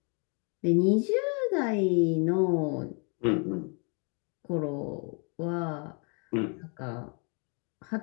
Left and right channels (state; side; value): quieter; right; 36.3 dB